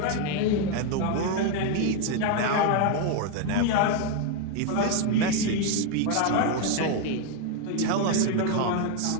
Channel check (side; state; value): both; different; correlation 0.01